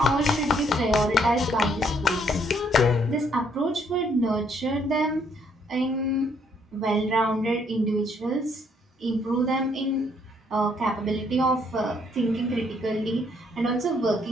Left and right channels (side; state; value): both; normal; correlation 0.68